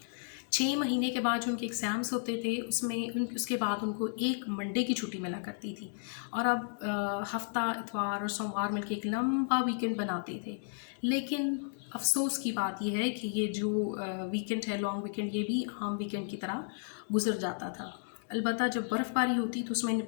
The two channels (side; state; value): right; silent; digital silence